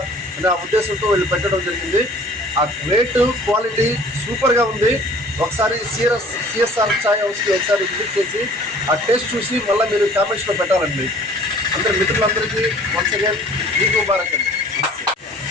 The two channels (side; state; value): both; normal; correlation 0.51